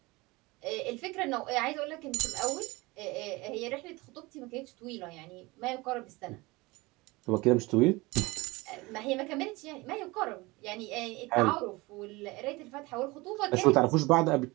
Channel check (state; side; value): quieter; left; 22.9 dB